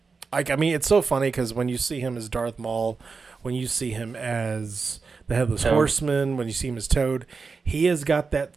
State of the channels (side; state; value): left; quieter; 4.7 dB